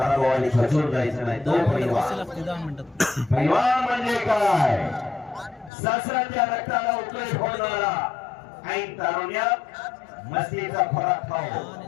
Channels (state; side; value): drops out; right; at 5.7 s